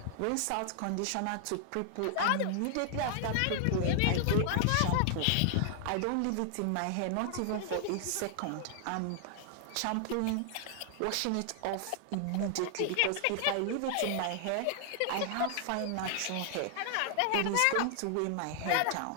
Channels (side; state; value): both; different; correlation 0.00